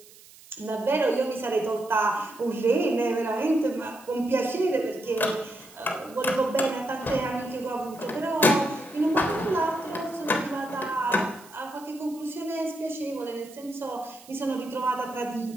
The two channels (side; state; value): right; noise; hiss, 22 dB below the sound